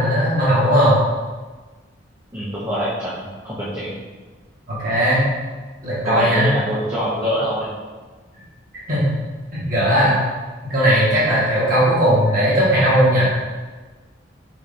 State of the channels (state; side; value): normal; both; correlation 0.40